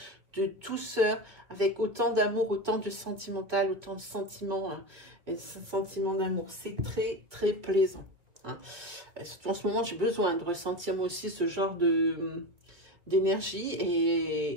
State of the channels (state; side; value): late; left; 2.1 ms